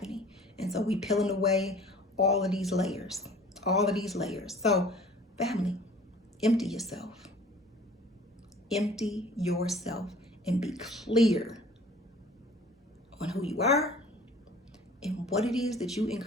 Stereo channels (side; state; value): both; normal; correlation 0.49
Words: And so we peeling away all of these layers. So, family, empty yourself. Empty yourself and be clear on who you are and what it is that you